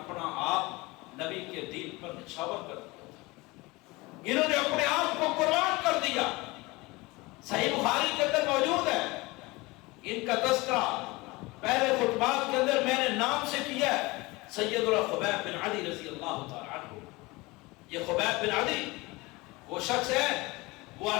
آپ نبی کے دین پر نچھاور کر دیا تھا، انہوں نے اپنے آپ کو قربان کر دیا۔ صحیح بخاری کے اندر موجود ہے، ان کا تذکرہ پہلے خطبات کے اندر میں نے نام سے کیا ہے، سیدنا خبیب بن عدی رضی اللہ تعالی عنہ۔ یہ خبیب بن عدی وہ شخص ہے، وہ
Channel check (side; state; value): right; quieter; 22.8 dB